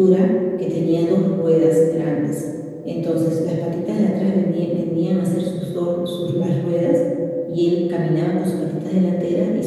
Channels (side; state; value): both; identical; correlation 1.00